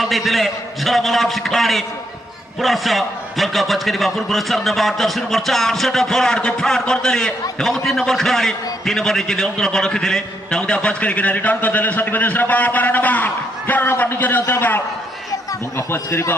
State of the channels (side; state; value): both; normal; correlation 0.76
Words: देथिले झलमल एफसी खिलाड़ी प्लस बॉल का बच करी बापुर पर नंबर 10 नंबर 4 सेट फॉरवर्ड को फ्रॉड कर देले एवं 3 नंबर खिलाड़ी 3 नंबर नीचे नियंत्रण बॉल रखिथिले ताउदा बच करी के रिटर्न कर देले साथी उद्देश्य बॉल 12 नंबर नीचे नियंत्रण बॉल बॉल बच करी